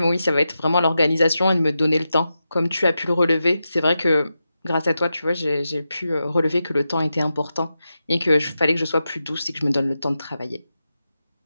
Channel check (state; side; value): inverted; both; correlation -0.90